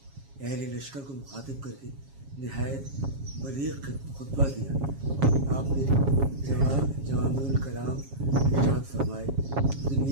اہل لشکر کو مخاطب کر کے نہایت بلیغ خطبہ دیا۔ آپ نے جوامع الکلام ارشاد فرمائے،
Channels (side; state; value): left; late; 7.3 ms